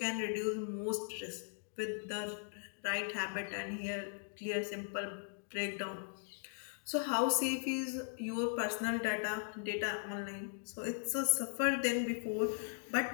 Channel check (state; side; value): silent; right; digital silence